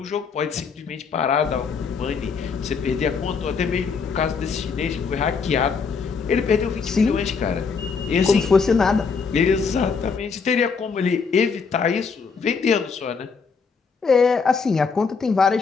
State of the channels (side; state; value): right; quieter; 5.3 dB